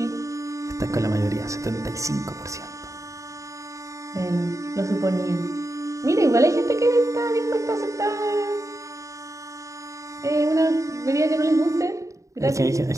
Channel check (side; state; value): left; late; 0.15 ms